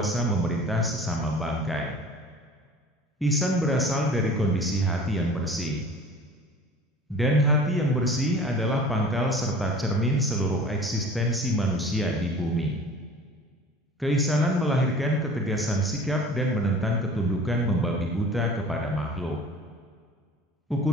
memerintah sesama bangkai. Ihsan berasal dari kondisi hati yang bersih. Dan hati yang bersih adalah pangkal serta cermin seluruh eksistensi manusia di bumi. Keihsanan melahirkan ketegasan sikap dan menentang ketundukan membabi buta kepada makhluk.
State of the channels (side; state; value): both; normal; correlation 0.43